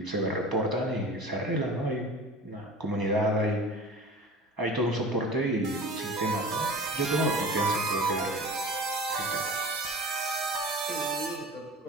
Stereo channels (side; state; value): both; normal; correlation 0.37